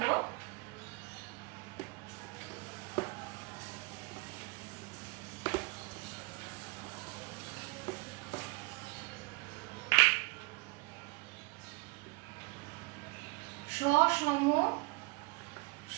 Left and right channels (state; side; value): quieter; left; 25.9 dB